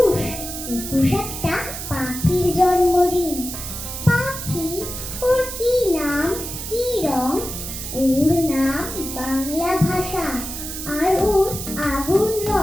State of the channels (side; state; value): right; noise; hiss, 7 dB below the sound